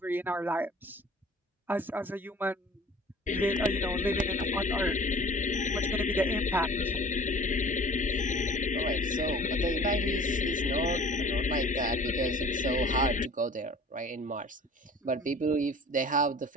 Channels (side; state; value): both; normal; correlation 0.46